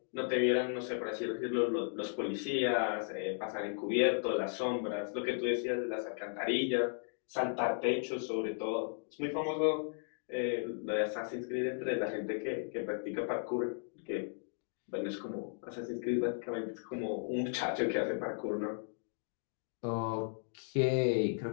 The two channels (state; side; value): silent; right; digital silence